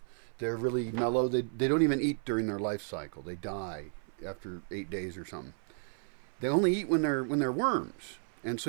They're really mellow. They don't even eat during their life cycle. They die after 8 days or something. They only eat when they're worms, and so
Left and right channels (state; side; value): silent; left; 56 dB below the other